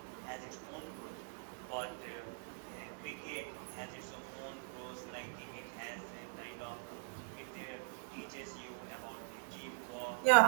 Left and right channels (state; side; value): silent; left; digital silence